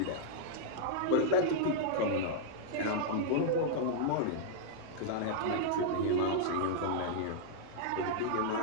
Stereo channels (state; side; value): different; both; correlation -0.02